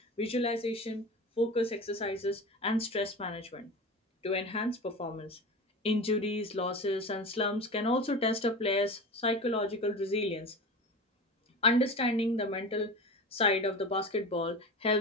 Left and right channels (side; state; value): both; normal; correlation 0.30